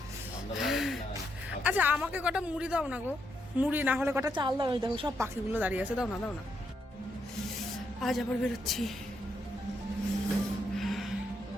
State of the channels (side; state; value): both; normal; correlation 0.79